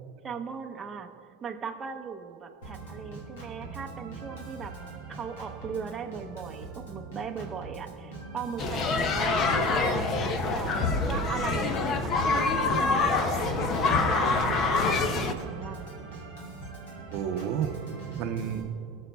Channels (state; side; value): normal; both; correlation 0.38